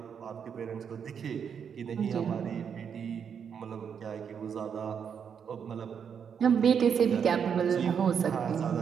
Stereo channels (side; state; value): left; quieter; 7.3 dB